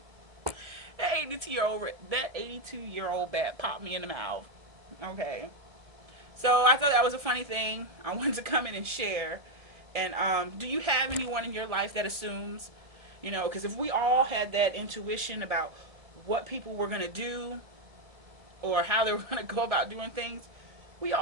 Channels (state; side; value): late; left; 1.7 ms